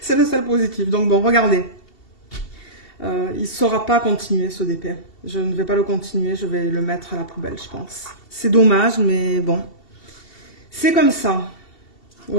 le seul positif. Donc bon, regardez. Il ne saura pas continuer ce DP. Je ne vais pas le continuer, je vais le mettre à la poubelle, je pense. C'est dommage, mais bon. C'est comme ça.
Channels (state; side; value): late; right; 2.7 ms